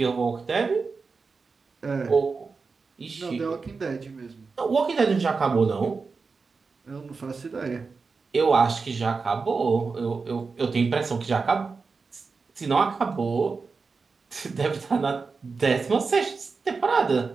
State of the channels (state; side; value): quieter; left; 4.6 dB